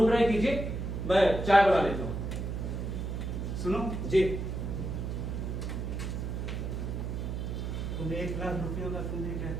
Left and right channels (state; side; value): noise; right; hum, 3 dB below the sound